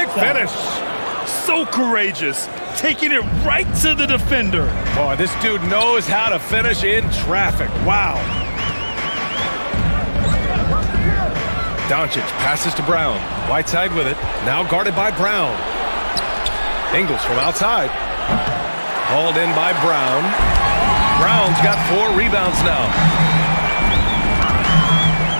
finish. So courageous, taking it right to the defender. Boy, this dude knows how to finish in traffic. Wow. Doncic passes to Brown. Whiteside with it. Now guarded by Brown. Ingles from outside. Hauled in by Brown. Brown's got 4 rebounds now.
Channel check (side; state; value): both; inverted; correlation -1.00